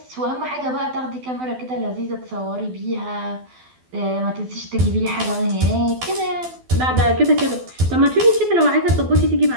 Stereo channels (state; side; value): late; left; 12 ms